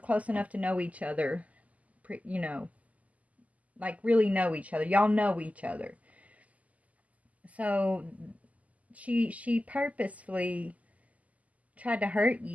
enough to know each other, like really know each other. Y'all know each other. So she purposefully tried to hurt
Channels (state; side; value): late; left; 0.073 ms